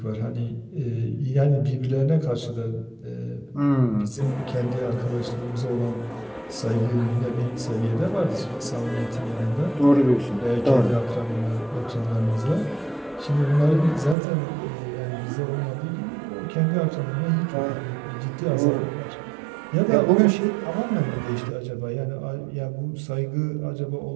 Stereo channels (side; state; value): left; drops out; at 14.2 s